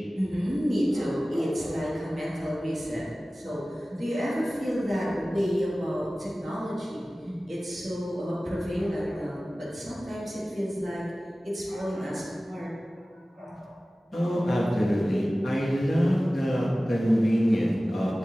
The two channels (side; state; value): both; normal; correlation 0.97